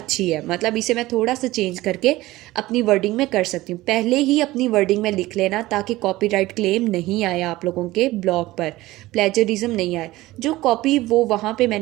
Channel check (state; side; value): quieter; left; 18.0 dB